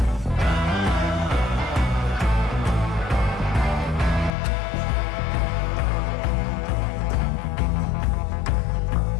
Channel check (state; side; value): drops out; right; at 4.3 s